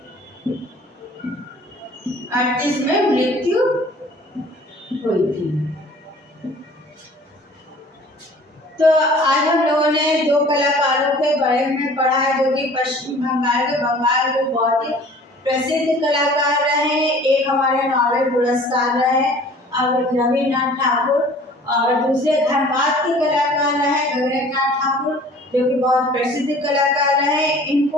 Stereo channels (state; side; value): normal; both; correlation 0.49